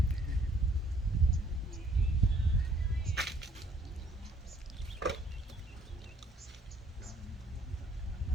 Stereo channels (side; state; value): both; normal; correlation 0.63